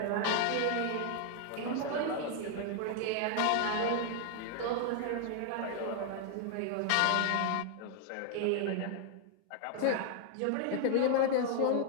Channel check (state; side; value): different; both; correlation 0.00